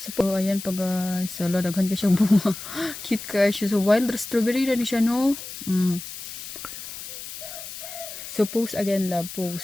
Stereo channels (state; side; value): noise; left; hiss, 10 dB below the sound